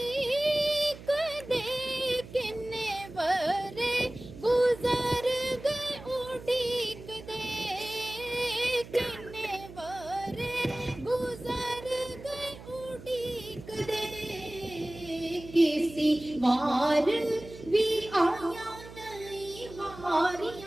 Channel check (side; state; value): right; noise; hum, 16 dB below the sound